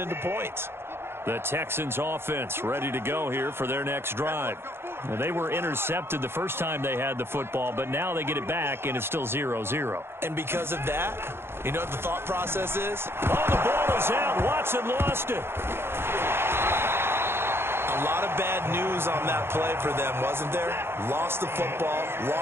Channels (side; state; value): left; late; 0.11 ms